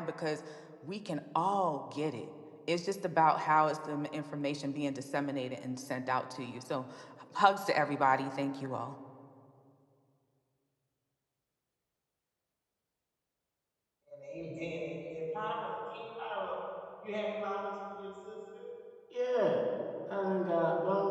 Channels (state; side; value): identical; both; correlation 1.00